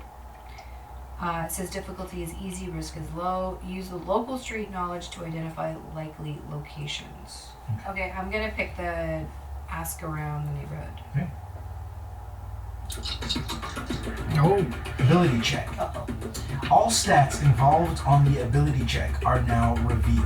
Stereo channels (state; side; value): identical; both; correlation 1.00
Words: It says difficulty is easy, risk is low. Use the local street knowledge to identify likely locations. Okay, I'm gonna pick the ask around the neighborhood. Okay. Oh, Ability check. Uh-oh. All stats involved on the ability check are now